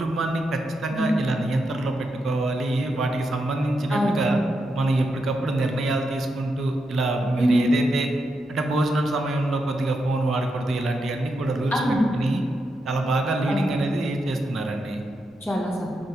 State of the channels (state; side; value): noise; left; rumble, 29 dB below the sound